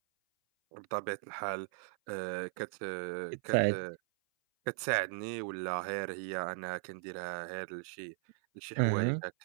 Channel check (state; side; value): silent; left; 53 dB below the other